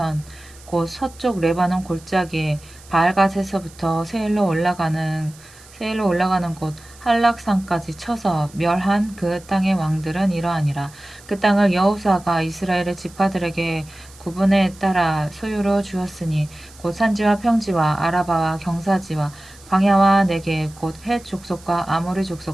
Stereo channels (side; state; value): right; noise; hiss, 23 dB below the sound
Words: 곧 서쪽 레바논 골짜기에 바알갓에서부터 세일로 올라가는 곳 한락산까지 쳐서 멸한 그 땅의 왕들은 이러하니라. 그 땅을 여호수아가 이스라엘의 지파들에게 구분에 따라 소유로 주었으니 곧 산지와 평지와 아라바와 경사지와 광야와 네겝 곧 헷 족속과 아모리